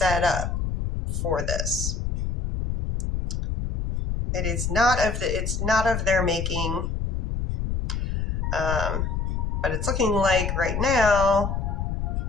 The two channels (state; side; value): noise; left; rumble, 1 dB below the sound